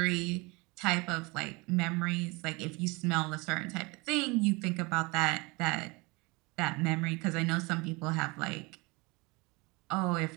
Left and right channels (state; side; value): quieter; left; 26.3 dB